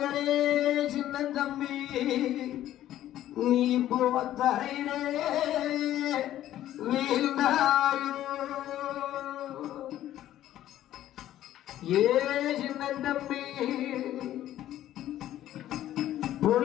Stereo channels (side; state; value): right; quieter; 12.8 dB